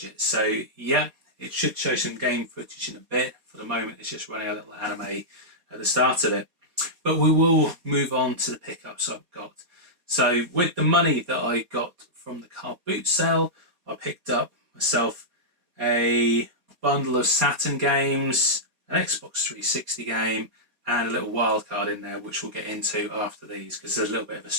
So yeah, it should show some game footage in a bit. For the moment, it's just running a little anime at the start of it. But we will move on to the pickups I've got. So with the money that I got from the carboot sale, I picked up myself a bundle of Saturn games, an Xbox 360 game, and a little wildcard in there, which we'll get into after these, because there's a little bit of a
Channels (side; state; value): left; late; 4.2 ms